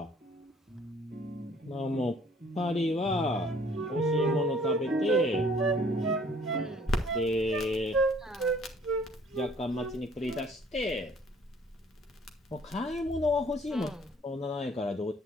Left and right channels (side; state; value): both; normal; correlation 0.58